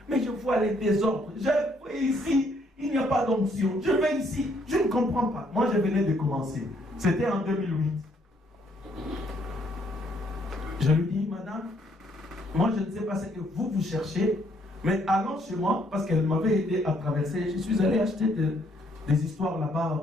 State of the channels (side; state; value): both; normal; correlation 0.69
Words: mais je vois les désordres. Je vois ici, il n'y a pas d'onction. Je vais ici, je ne comprends pas. Moi, je venais de commencer. C'était en 2008. Je lui dis, madame, moi, je ne sais pas ce que vous cherchez, mais allons chez moi, parce qu'elle m'avait aidé à traverser. Je suis allé acheter des histoires